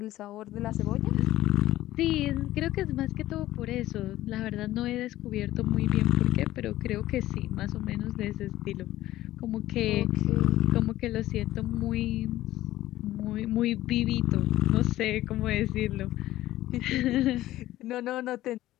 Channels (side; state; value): right; quieter; 15.2 dB